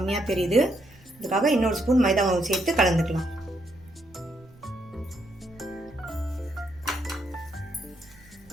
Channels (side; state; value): right; noise; rumble, 26 dB below the sound